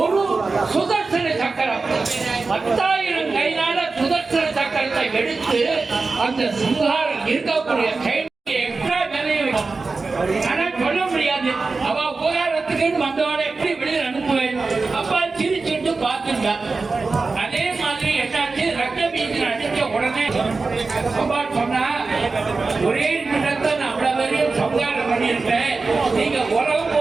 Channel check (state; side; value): quieter; left; 4.0 dB